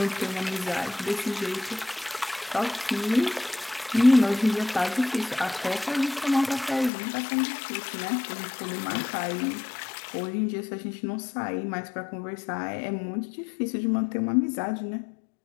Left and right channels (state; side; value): drops out; right; at 6.9 s